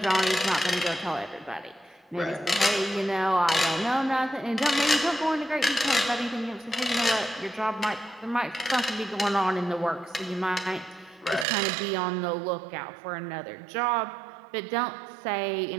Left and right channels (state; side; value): drops out; left; at 11.5 s